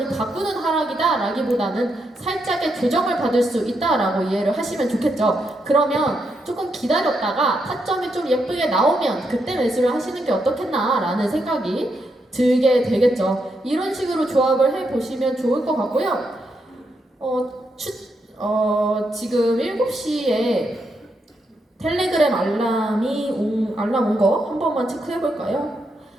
바꾸는 하락이다 라기보다는 살짝의 조정을 받을 수 있다라고 이해를 하시면 좋겠죠. 그러면 조금 기다렸다가 타점이 좀 예쁘게 나오면 그때 매수를 하시는 게 어떻겠나 라는 생각이 들게 되겠죠. 이런 식으로 조합을 해보시면 좋을 것 같고요. 지금 7시에 텔레그램 알람 온 거 한 번만 체크해 볼까요?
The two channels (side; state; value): both; normal; correlation 0.81